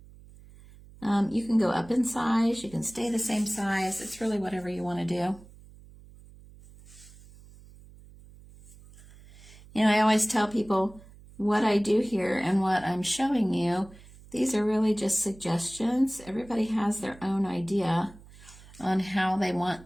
You can go up in size, you can stay the same size. It's really whatever you want to do. You know, I always tell people what I do here and what I'm showing you, these are really just suggestions. Everybody has their own idea on how they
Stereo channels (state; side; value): noise; right; hum, 21 dB below the sound